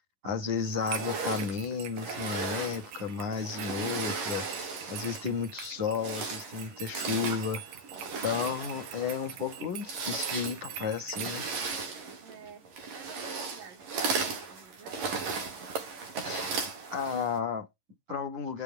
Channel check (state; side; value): late; left; 11 ms